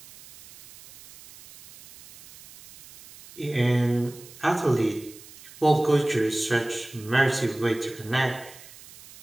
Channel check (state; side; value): noise; right; hiss, 20 dB below the sound